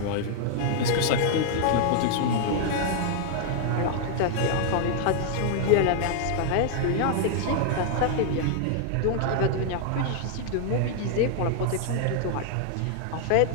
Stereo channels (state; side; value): different; both; correlation 0.00